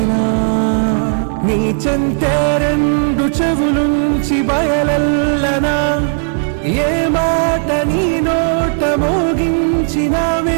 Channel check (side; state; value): left; silent; digital silence